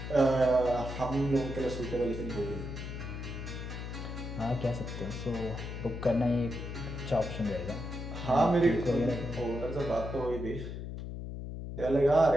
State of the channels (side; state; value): left; noise; hum, 7 dB below the sound